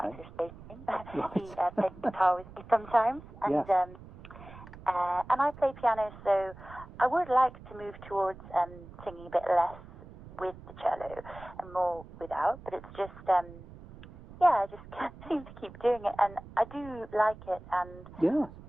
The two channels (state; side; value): noise; right; rumble, 17 dB below the sound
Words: his bass name. He plays guitar with me sometimes, and I play piano, so I would like to move towards singing a bit less with the cello and more without, but it's just I just can't seem to keep doing it, and I do like it, and